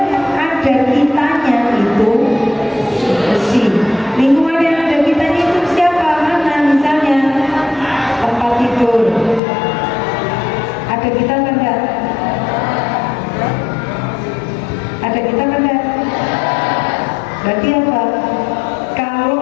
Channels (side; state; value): right; drops out; at 9.4 s